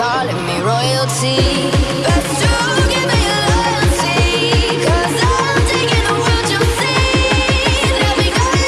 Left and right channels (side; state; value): both; identical; correlation 1.00